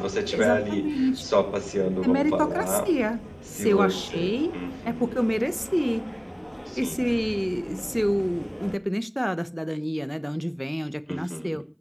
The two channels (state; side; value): identical; both; correlation 1.00